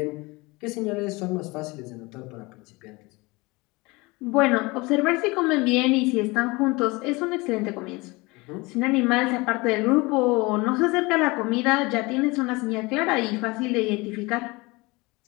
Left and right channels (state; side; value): quieter; right; 24.2 dB